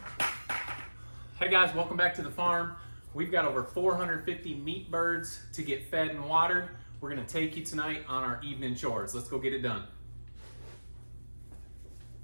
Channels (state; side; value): inverted; both; correlation -1.00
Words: Hey guys, welcome back to the farm. We've got over 450 meat birds to get fed and watered. We're gonna take you tonight on our evening chores. Let's go get it done.